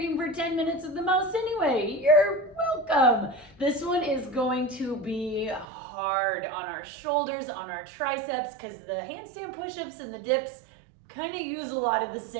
for 10 minutes at the most anyway. You're welcome. This one is going to be hard on our shoulders, on our triceps, because the handstand push-ups and the dips kind of use a lot of the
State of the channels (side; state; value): left; drops out; at 5.7 s